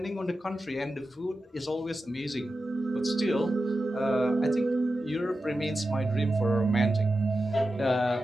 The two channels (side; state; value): both; normal; correlation 0.92